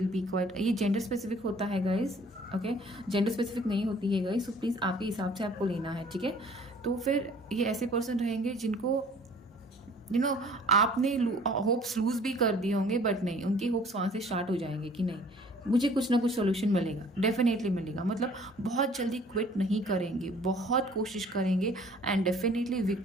बी क्वाइट, ये जेंडर स्पेसिफिक होता है गाइज, ओके, जेंडर स्पेसिफिक नहीं होती है गाइज, सो प्लीज़ आपके हिसाब से आपको लेना है, ठीक है। तो फिर ये ऐसे पर्सन रहेंगे जिनको आपने होप्स लूज भी कर दिए होंगे, बट नहीं, उनके होप्स वहाँ से स्टार्ट हो जाएंगे कि नहीं, मुझे कुछ ना कुछ सोल्यूशन मिलेगा, डेफिनेटली मिलेगा। मतलब बहुत जल्दी क्विट नहीं करेंगे, बहुत कोशिश करेंगे एंड डेफिनेटली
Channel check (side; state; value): both; normal; correlation 0.53